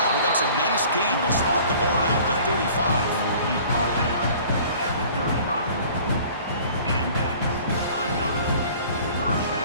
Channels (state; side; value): inverted; both; correlation -0.49